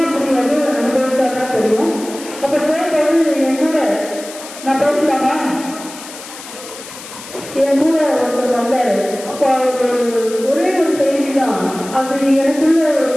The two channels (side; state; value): left; noise; hiss, 14 dB below the sound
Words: புரியாது, அனுபவிச்சாதான் தெரியும். அப்ப சேர்ந்து என்னோட நான் பேசலாமா? என் கூட ஒருத்தர் வந்தாரு. அப்போ ஒரே ஒரு செய்தி தான் அது எனக்குள்ள